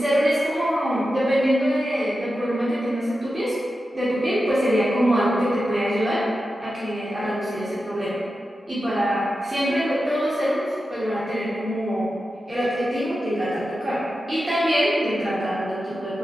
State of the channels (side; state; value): both; normal; correlation 0.91